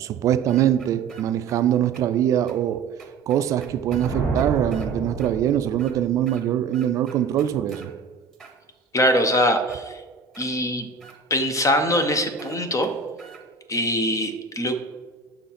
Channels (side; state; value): left; quieter; 4.7 dB